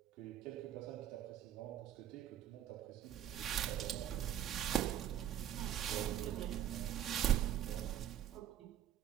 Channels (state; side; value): quieter; left; 10.3 dB